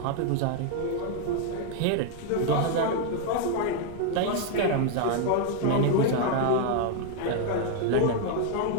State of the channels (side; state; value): both; different; correlation 0.00